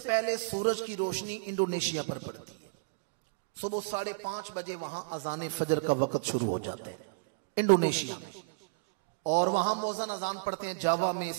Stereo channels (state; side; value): quieter; left; 32.3 dB